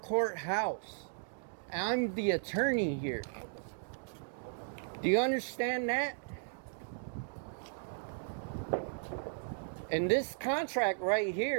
I'm the attorney here. Do you understand that? And this contract right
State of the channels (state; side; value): silent; left; digital silence